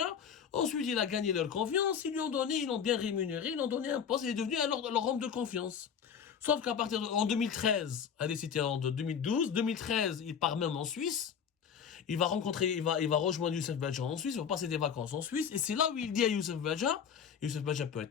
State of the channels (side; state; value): right; quieter; 7.5 dB